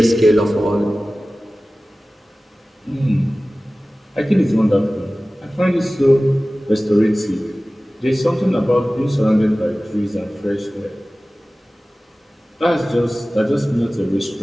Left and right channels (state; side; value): normal; both; correlation 0.97